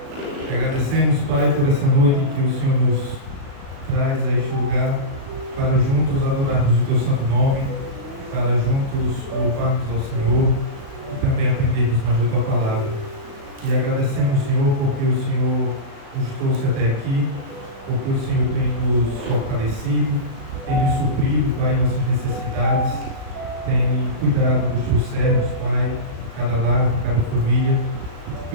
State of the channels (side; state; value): left; late; 36 ms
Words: Agradecemos, Pai, por essa noite em que o Senhor nos traz a este lugar para juntos adorarmos o Teu santo nome, para juntos louvarmos ao Senhor e também aprendermos mais da Tua palavra. E agradecemos, Senhor, porque o Senhor nos trouxe até aqui, porque o Senhor tem nos fortalecido, tem nos suprido, Pai, nossas necessidades, tem cuidado dos Teus servos, Pai, cada lar, cada família, e te